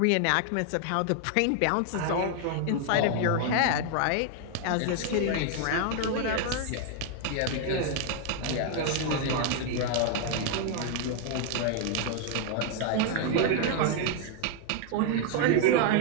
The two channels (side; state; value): both; different; correlation 0.00